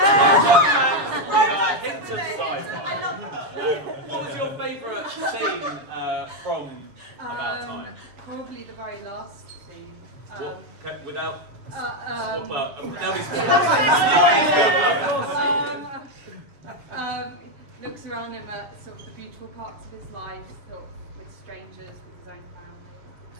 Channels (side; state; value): left; late; 7.0 ms